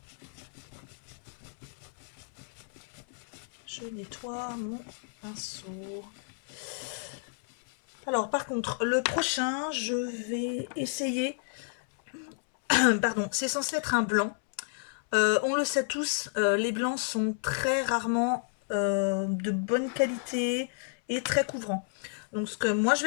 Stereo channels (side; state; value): right; silent; 57 dB below the other